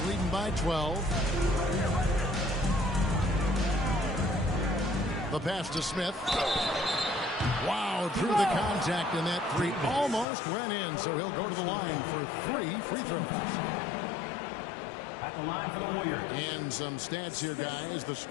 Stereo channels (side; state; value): right; drops out; at 10.2 s